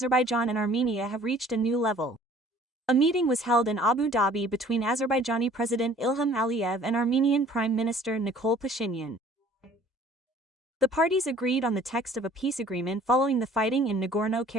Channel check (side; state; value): both; normal; correlation 0.53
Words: and Armenia have reached a new level. A meeting was held in Abu Dhabi between Azerbaijani President Ilham Aliyev and Armenian Prime Minister Nikol Pashinyan. The parties agreed on the text of a peace agreement following the fighting in